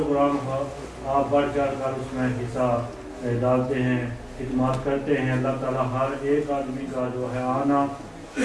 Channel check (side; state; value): both; identical; correlation 1.00